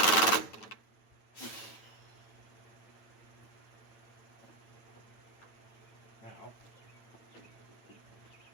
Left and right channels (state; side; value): late; right; 9.1 ms